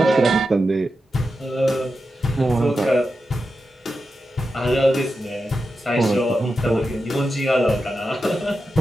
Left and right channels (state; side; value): normal; both; correlation 0.90